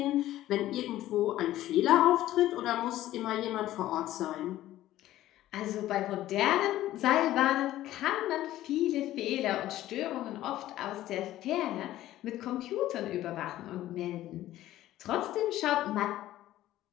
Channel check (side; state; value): right; quieter; 14.3 dB